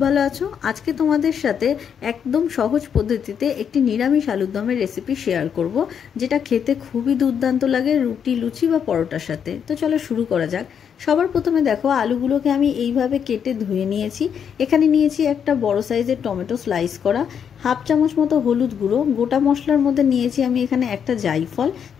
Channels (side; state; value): right; quieter; 7.8 dB